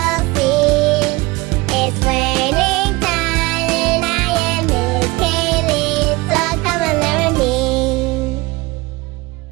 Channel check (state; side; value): quieter; left; 22.7 dB